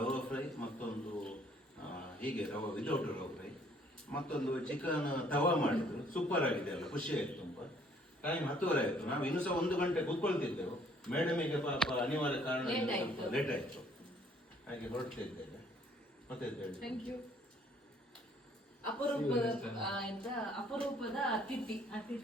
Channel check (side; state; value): both; normal; correlation 0.62